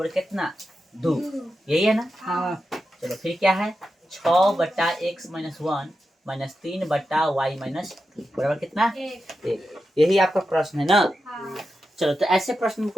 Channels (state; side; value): normal; both; correlation 0.89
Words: कितना 2। यही है ना। चलो फिर क्या है 6 बटा x - 1 माइनस 3 बटा y - 2 बराबर कितना 1। यही आपका प्रश्न है ना। चलो तो ऐसे प्रश्न